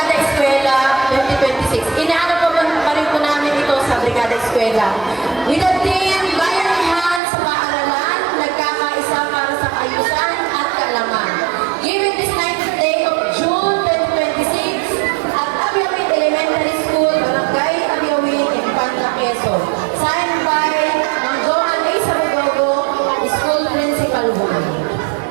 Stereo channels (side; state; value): left; drops out; at 7.2 s